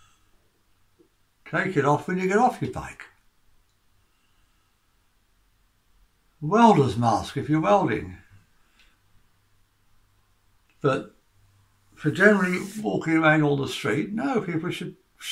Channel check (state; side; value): identical; both; correlation 1.00